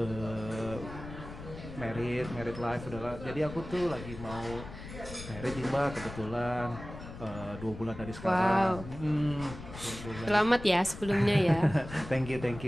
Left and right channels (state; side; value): noise; left; rumble, 12 dB below the sound